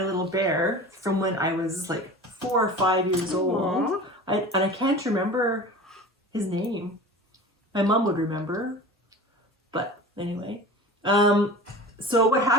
bear from when I was like 4 or 5 years old. And I can't remember his name. My mom would remember. But anyway. So what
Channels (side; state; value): both; normal; correlation 0.36